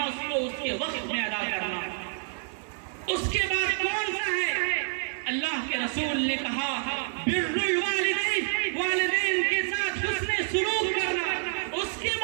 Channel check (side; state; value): left; silent; 59 dB below the other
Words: کو اس کے وقت میں ادا کرنا. اس کے بعد کون سا ہے؟ اللہ کے رسول نے کہا بر الوالدین, والدین کے ساتھ حسن سلوک کرنا. اس کے